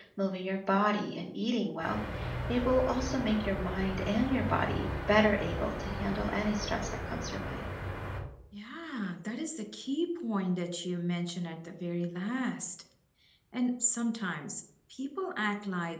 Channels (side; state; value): both; identical; correlation 1.00